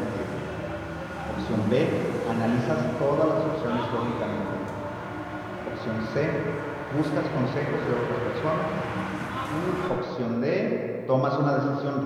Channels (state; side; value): identical; both; correlation 1.00